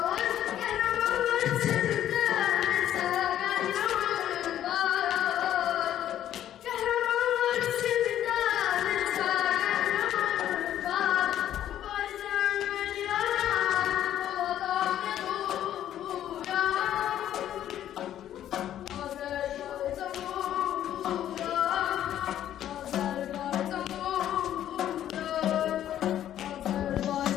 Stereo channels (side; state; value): right; quieter; 11.4 dB